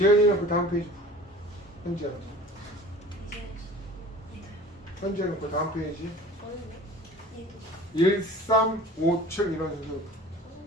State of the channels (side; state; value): both; normal; correlation 0.44